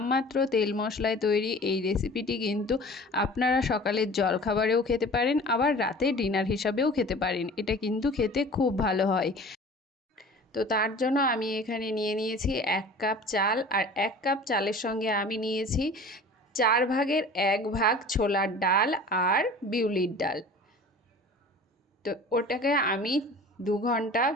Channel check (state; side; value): normal; both; correlation 0.42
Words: তেল মশলায় তৈরি এই রেসিপিটি কিন্তু আপনারা সকালের জলখাবারেও খেতে পারেন, আবার রাতে ডিনার হিসাবেও খেতে পারেন। এটা কিন্তু খেতে খুব ভালো হয়। তো তার জন্য আমি এখানে নিয়ে নিয়েছি 1 কাপ চাল, আর 1 কাপ চালের সঙ্গে আমি নিয়েছি 4 ভাগের 1 ভাগ ছোলার ডাল আর বিউলির ডাল। তো ওটাকে আমি 2 ঘন্টা